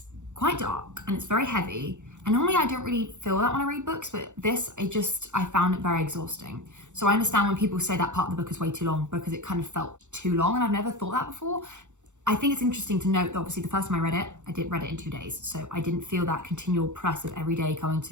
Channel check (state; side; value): late; left; 0.84 ms